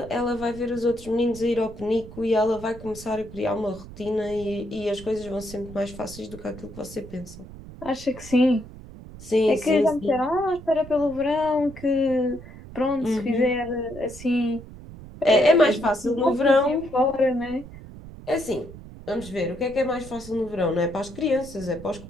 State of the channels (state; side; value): noise; right; rumble, 16 dB below the sound